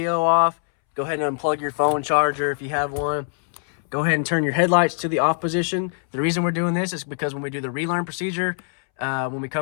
off. Go ahead and unplug your phone charger if you have one. Go ahead and turn your headlights to the off position. The reason we're doing this is because when we do the relearn procedure, when we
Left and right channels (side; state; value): right; silent; 64 dB below the other